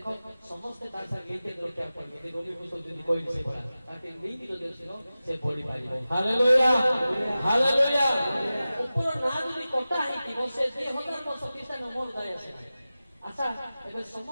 ସମସ୍ତେ ତା ସାଙ୍ଗେ ଲିଙ୍କେଜ ରଖିବାକୁ ପଡିବ। ଯଦି ରୋମୀ ପୁସ୍ତକ ଯଦି କହିଲି ସେ ଭଳିଆ ତାকে ଲିଙ୍କ୍ ଯଦି ଆସିବ ସେ ପଢିପାରିବ। Hallelujah hallelujah. ଉପର ନାଁ ଯଦି କଟା ହେଇଥିବ ସେ 2000 ବର୍ଷ ଖ୍ରୀଷ୍ଟିଆନ ମୋର ଯାଇ ଆସେ ନାହିଁ। ଆଚ୍ଛା ଏବେ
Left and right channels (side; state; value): both; inverted; correlation -0.96